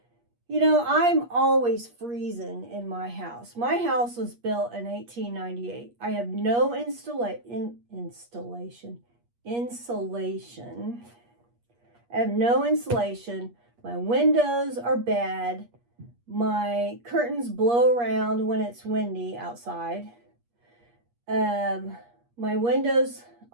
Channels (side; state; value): left; late; 8.4 ms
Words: you know, I'm always freezing in my house. My house was built in 1898. I have no insulation. I have no insulation. My windows are bad. My curtains blow around when it's windy outside. My windows